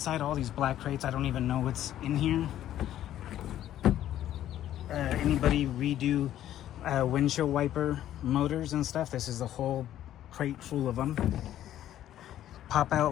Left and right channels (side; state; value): right; quieter; 12.1 dB